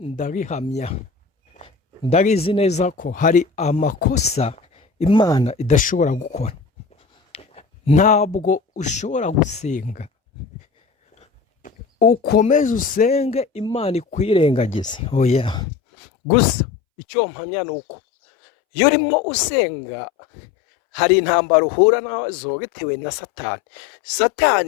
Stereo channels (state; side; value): drops out; right; at 15.7 s